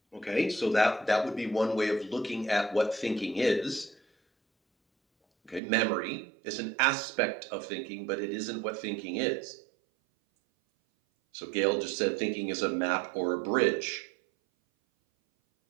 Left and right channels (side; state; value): left; drops out; at 5.6 s